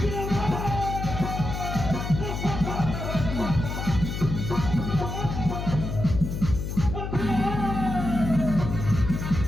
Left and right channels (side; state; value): left; noise; hum, 4 dB below the sound